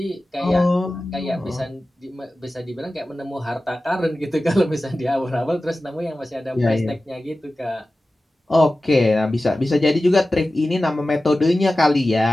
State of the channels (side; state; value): both; normal; correlation 0.95